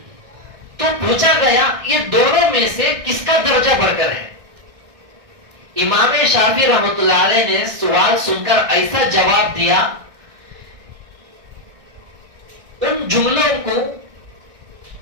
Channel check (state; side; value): late; left; 1.6 ms